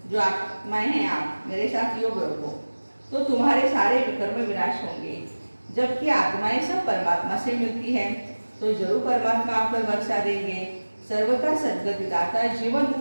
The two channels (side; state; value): both; inverted; correlation -1.00